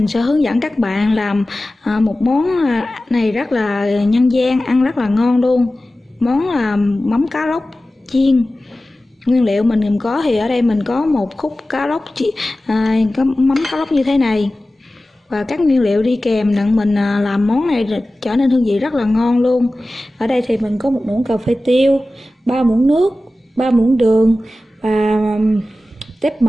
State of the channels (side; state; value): both; normal; correlation 0.96